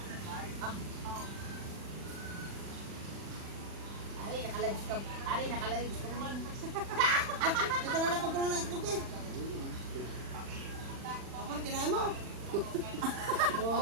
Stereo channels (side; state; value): left; late; 40 ms